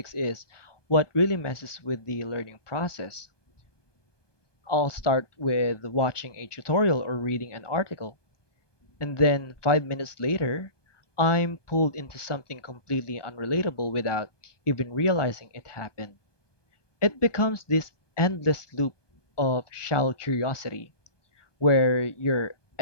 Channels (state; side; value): late; right; 1.2 ms